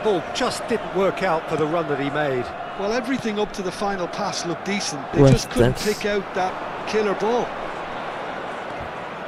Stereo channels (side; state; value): both; identical; correlation 1.00